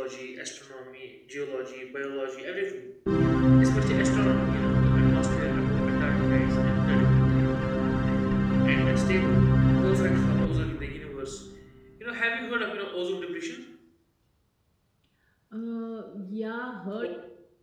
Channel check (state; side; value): identical; both; correlation 1.00